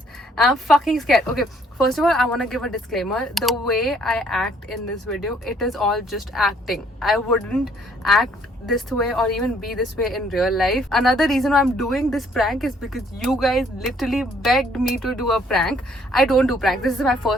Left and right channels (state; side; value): normal; both; correlation 0.64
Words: I'm fucking scared. Okay, first of all, I want to give a disclaimer. The way I act in this video, it is all just acting. I wouldn't act this way or even be this way in real life. Another reason why I'm doing this prank is because you guys literally begged me to do a prank. I don't do prank. This is my